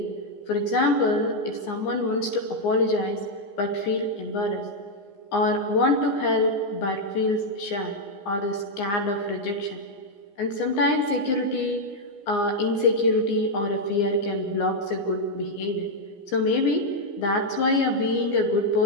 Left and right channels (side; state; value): right; late; 15 ms